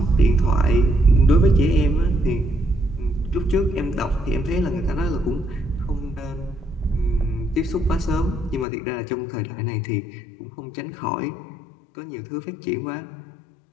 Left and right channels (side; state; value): right; drops out; at 8.7 s